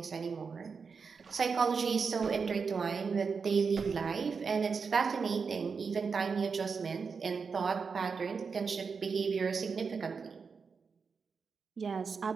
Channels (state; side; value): quieter; left; 5.4 dB